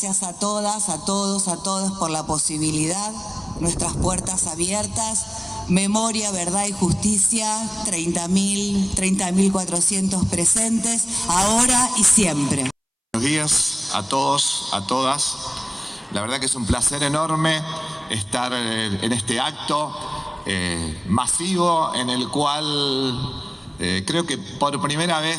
a todas, a todos, a todos por la posibilidad, nuestras puertas abiertas. Memoria, verdad y justicia, 30.400 presentes, ahora y siempre. Buenos días a todos, a todas. La verdad que es un placer enorme estar en este acto masivo en el cual creo que por primera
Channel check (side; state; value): both; identical; correlation 1.00